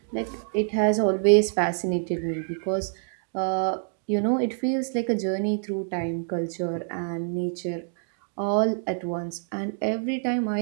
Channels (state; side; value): silent; left; 61 dB below the other